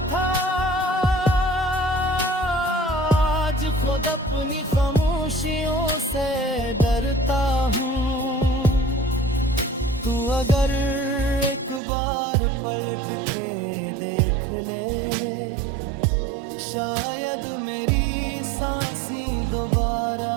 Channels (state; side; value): drops out; left; at 11.8 s